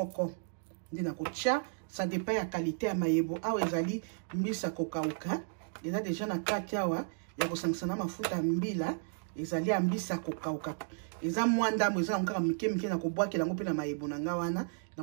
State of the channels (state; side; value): silent; left; digital silence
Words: ndi na kotia ça dépend ya qualité ya mayebo awa ezali mbisa kokauka eza déjà na kati awa ya kosangisa na mafuta mbila ezali ya mbisa kokauka eza mwa ndambo eza nkaka mike na kobwakela yango pe na mayebo na nga wana